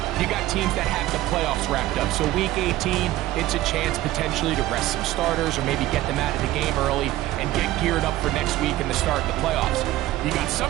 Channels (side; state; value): left; quieter; 15.7 dB